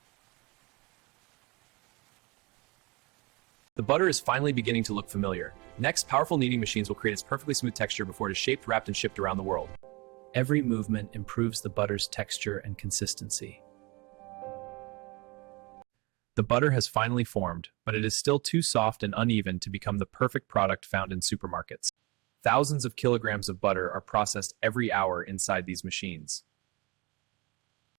The butter is finally beginning to look familiar. Next, powerful kneading machines will create its perfectly smooth texture before it is shaped, wrapped, and shipped around the world. Every movement improves the butter's texture and consistency. The butter has finally formed, but it is still too soft and uneven to become the perfect product found in supermarkets. Thousands of kilograms of butter are processed every hour inside these machines.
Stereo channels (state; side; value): quieter; left; 25.7 dB